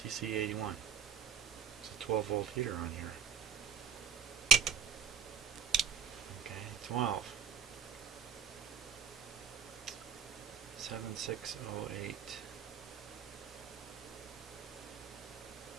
81. It's a 12 volt heater on here. Okay, 12. 7608.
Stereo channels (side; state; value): left; quieter; 6.6 dB